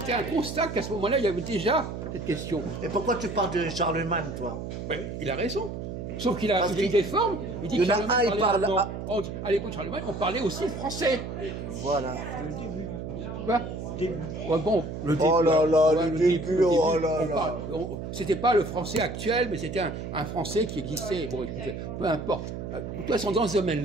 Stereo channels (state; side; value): noise; right; hum, 7 dB below the sound